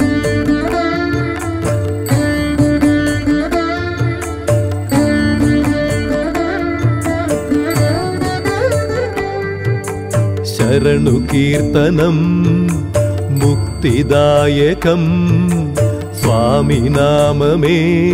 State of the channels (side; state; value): both; identical; correlation 1.00